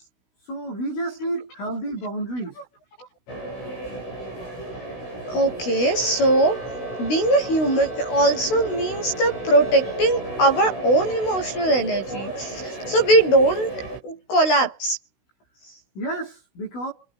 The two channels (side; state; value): right; late; 16 ms